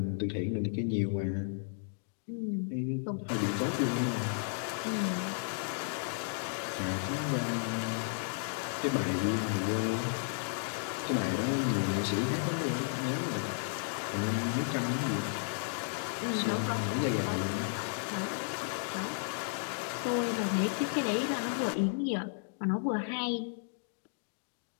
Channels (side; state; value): right; silent; digital silence